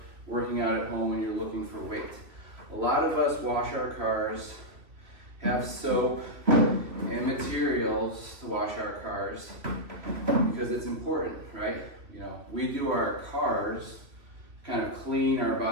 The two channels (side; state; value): left; late; 2.8 ms